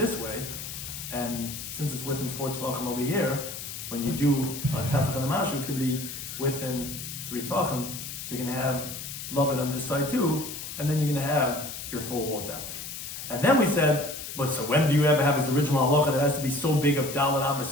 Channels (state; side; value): noise; left; hiss, 8 dB below the sound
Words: way, and since it's within 4 tefachim over here, when you do a tefach and the mashu, it's going to be within 3 tefachim, so you're going to have lavud on this side too, and then you're going to have your 4 walls down. And then we said, but so when do you ever have this original halacha that has to be so big of dalet amas